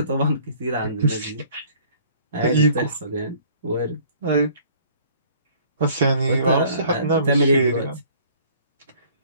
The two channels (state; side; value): inverted; both; correlation -0.55